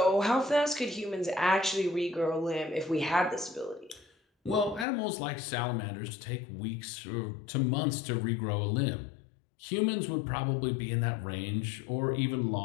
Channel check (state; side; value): drops out; right; at 4.9 s